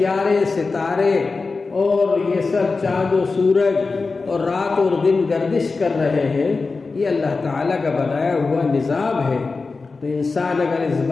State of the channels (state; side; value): quieter; right; 4.1 dB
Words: ستارے اور یہ سب چاند و سورج اور رات اور دن گردش کر رہے ہیں۔ یہ اللہ تعالیٰ کا بنایا ہوا نظام ہے۔ تو انسان اگر اس